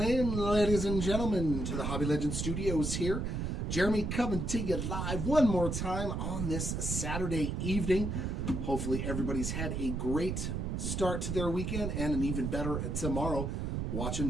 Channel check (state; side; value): noise; right; rumble, 2 dB below the sound